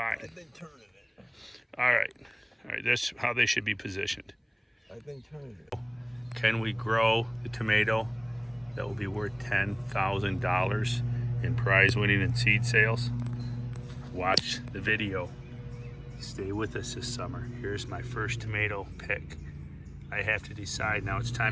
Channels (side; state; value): both; identical; correlation 1.00